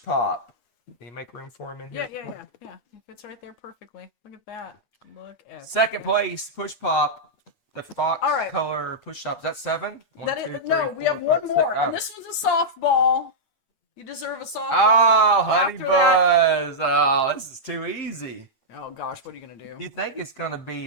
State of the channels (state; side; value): late; right; 8.5 ms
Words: pop. Can you make room for him in here? Yeah. It fits right there perfectly. Look at that. Look at Second place, push pop. The fox All right. color push up. Is that 7? That is, no, we have one more, and this one's a softball. You deserve a softball. Oh, honey After that- buzz. Oh, this is too easy. Oh gosh, what are you gonna do? You think it's gonna be